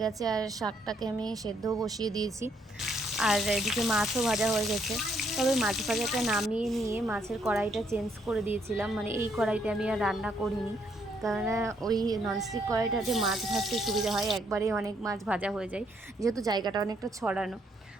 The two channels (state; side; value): normal; both; correlation 0.71